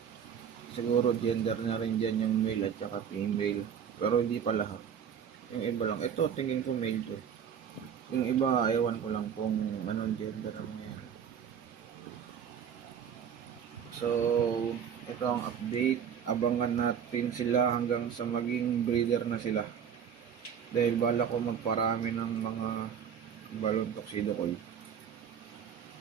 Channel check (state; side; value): quieter; left; 7.9 dB